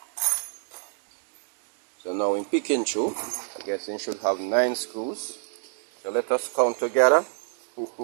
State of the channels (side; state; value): left; silent; digital silence